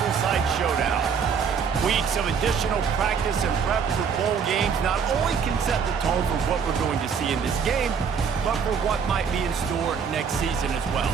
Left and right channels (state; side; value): quieter; left; 6.4 dB